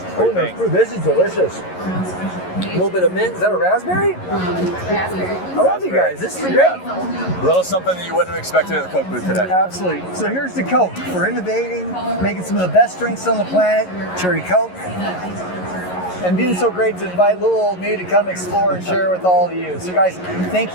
What do you no, think? fruit. This is delicious. A little bit of mint. Is that a raspberry? Raspberry. I love you guys. This is great. Yeah. A little something that you wouldn't have expected at the Coke booth today. Absolutely. So here's the Coke for innovating, making some of the best drinks on the planet, Cherry Coke, and being so great to invite little old me to come explore and share with all of you. So guys, thank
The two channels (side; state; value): right; late; 11 ms